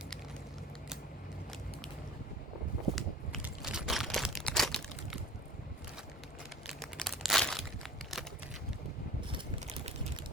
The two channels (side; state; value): both; normal; correlation 0.42